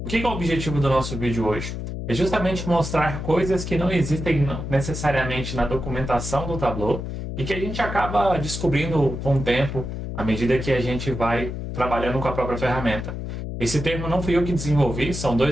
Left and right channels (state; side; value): noise; left; hum, 6 dB below the sound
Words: O que é o objetivo do nosso vídeo hoje? É justamente mostrar coisas que não existem necessariamente na documentação do Tableau e que a gente acaba descobrindo com o tempo, à medida que a gente vai trabalhando com a própria ferramenta. Esse termo não fui eu que desenvolvi, são